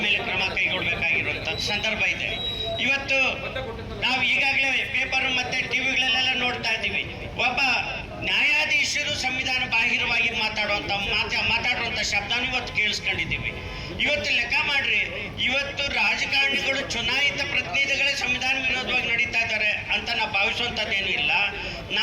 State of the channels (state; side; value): identical; both; correlation 1.00